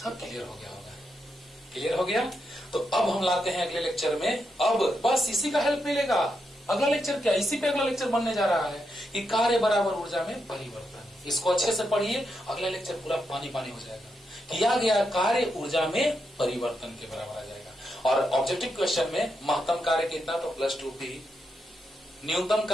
क्लियर हो गया होगा, क्लियर हो गया। तो अब हम लाते हैं अगले लेक्चर में, अब बस इसी का हेल्प मिलेगा। अगला लेक्चर क्या, इसी पे अगला लेक्चर बनने जा रहा है कि कार्य बराबर ऊर्जा में परिवर्तन। इसको अच्छे से पढ़िए, अगला लेक्चर पूरा पानी पानी हो जाएगा। किया गया कार्य ऊर्जा में परिवर्तन के बराबर आ जाएगा। और ऑब्जेक्टिव क्वेश्चन में महत्तम कार्य कितना, तो +2p, न्यूनतम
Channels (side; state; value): both; normal; correlation 0.83